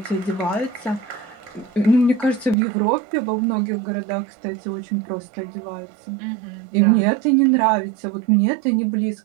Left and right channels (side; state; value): left; drops out; at 2.6 s